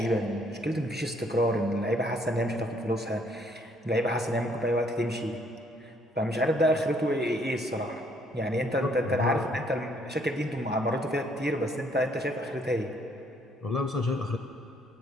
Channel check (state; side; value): normal; both; correlation 0.66